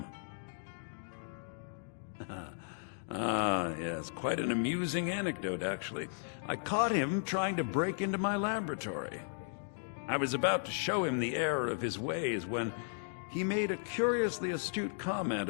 Yes, quite an amusing anecdote, actually. I caught him trying to break into my laboratory. I was about to show him the error of his ways when he made a curiously astute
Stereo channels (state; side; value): silent; right; digital silence